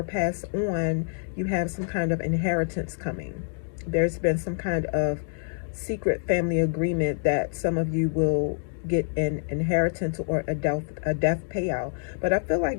passed on, you have some kind of inheritance coming. There's been some kind of secret family agreement that some of you will get an inheritance or a death payout. But I feel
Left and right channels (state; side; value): silent; right; digital silence